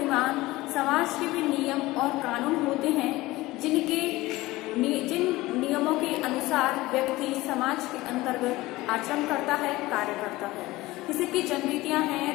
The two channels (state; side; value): quieter; right; 19.1 dB